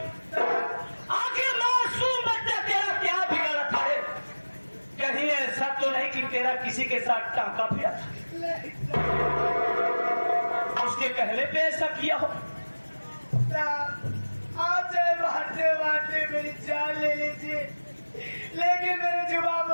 आखिर मासूम बच्चा तेरा क्या बिगड़ा था? कहीं ऐसा तो नहीं कि तेरा किसी के साथ टांका पिया था, उसके कहने पे ऐसा किया हो? आप चाहे मारते मारते मेरी जान ले लीजिए, लेकिन मेरे जुबान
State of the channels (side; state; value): both; inverted; correlation -1.00